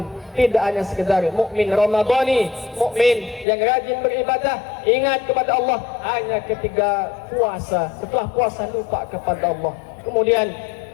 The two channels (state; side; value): drops out; right; at 3.5 s